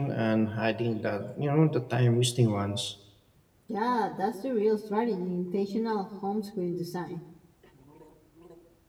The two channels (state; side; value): identical; both; correlation 1.00